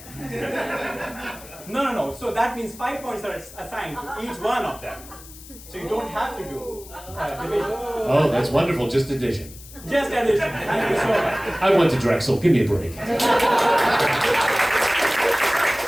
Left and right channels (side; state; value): left; noise; hiss, 18 dB below the sound